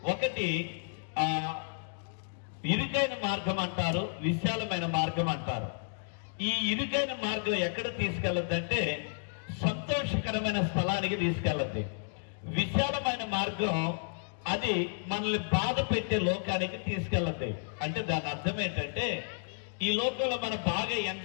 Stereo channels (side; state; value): right; silent; digital silence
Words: ఒకటి ఇరుకైన మార్గం అంటారు, విశాలమైన మార్గం అంటారు. ఈ ఇరుకైన మార్గం ఎక్కడ తీసుకెళ్ళద్దంటే సంతోషకరమైన స్థలానికి తీసుకెళ్ళద్ది. విశాలమైన మార్గం అది మనల్ని బాధ పెట్టే లోకానికి తీసుకెళ్ళద్ది. అంటే దాని అర్థం ఏంటంటే ఈ లోకంలో మనం బాగా